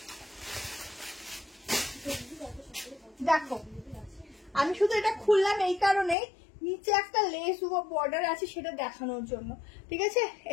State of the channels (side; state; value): right; drops out; at 6.2 s